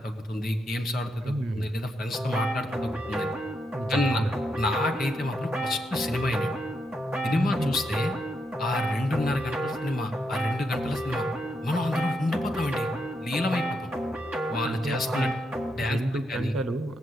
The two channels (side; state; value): both; normal; correlation 0.81